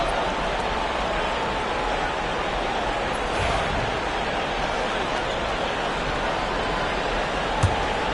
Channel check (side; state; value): both; identical; correlation 1.00